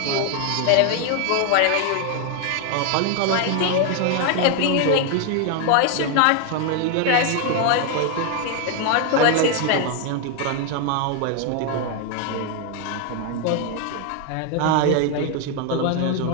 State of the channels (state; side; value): different; both; correlation 0.01